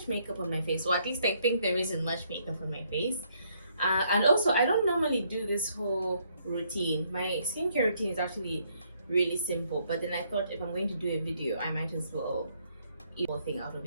makeup on my face, or at least I think there isn't much makeup on my face. And also, I don't normally do this whole routine. My skincare routine is actually really simple, but then I thought if I'm going to do a video, I might as well eat the whole thing out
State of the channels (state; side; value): inverted; both; correlation -0.71